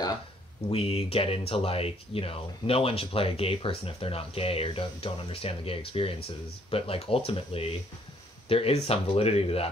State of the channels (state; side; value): normal; both; correlation 0.65